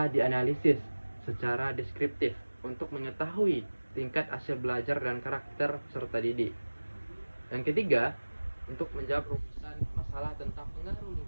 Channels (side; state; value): both; inverted; correlation -1.00